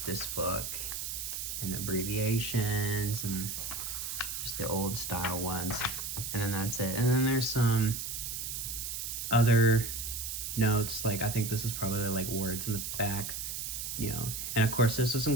this book, and abbreviations and just the old style ones, and then that's it. And then there's some other notes, like I think this is probably like words in the back, you know. And of course, this was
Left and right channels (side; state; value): right; noise; hiss, 5 dB below the sound